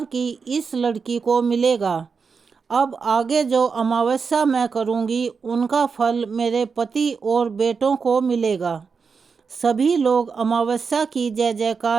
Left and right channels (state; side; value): quieter; left; 5.4 dB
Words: की इस लड़की को मिलेगा। अब आगे जो अमावस्या मैं करूंगी उनका फल मेरे पति और बेटों को मिलेगा। सभी लोग अमावस्या की जय